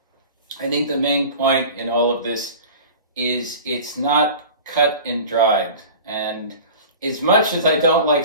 I think the main point in all of this is it's not cut and dried. And as much as I don't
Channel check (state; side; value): inverted; both; correlation -0.39